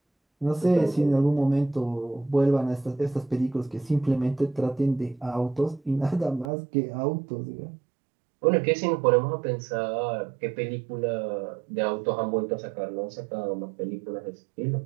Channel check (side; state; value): left; drops out; at 6.5 s